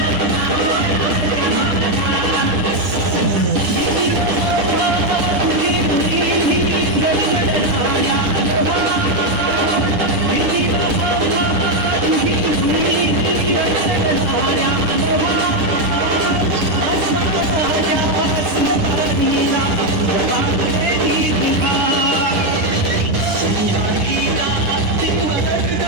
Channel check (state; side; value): late; left; 9.9 ms